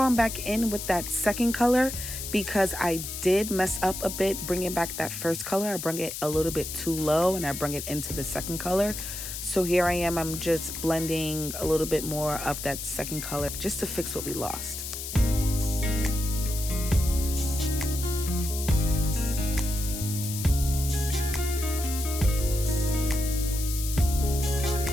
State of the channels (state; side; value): noise; left; hiss, 7 dB below the sound